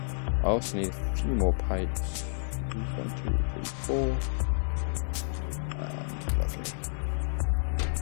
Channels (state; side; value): silent; right; digital silence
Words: also need a few more pipes. 1, 2, 3, 4. Lovely.